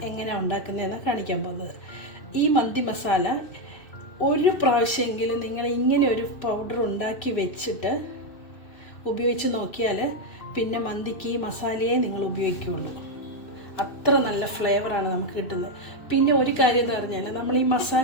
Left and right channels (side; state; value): right; late; 2.6 ms